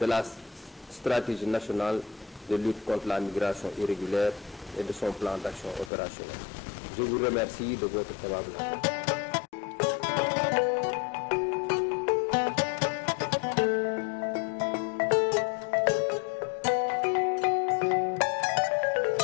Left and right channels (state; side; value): drops out; right; at 5.9 s